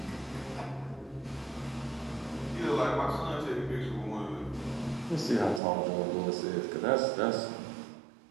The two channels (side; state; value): left; drops out; at 5.6 s